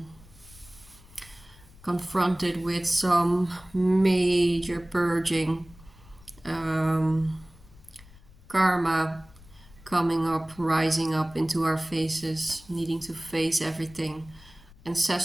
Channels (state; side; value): noise; left; rumble, 23 dB below the sound